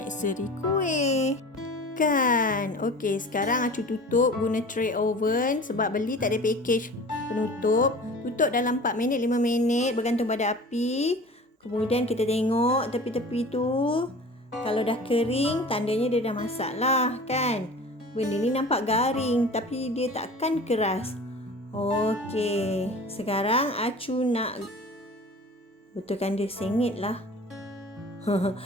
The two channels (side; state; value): both; normal; correlation 0.40